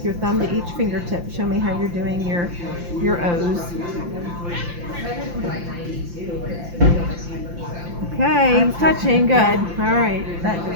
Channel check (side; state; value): left; late; 5.8 ms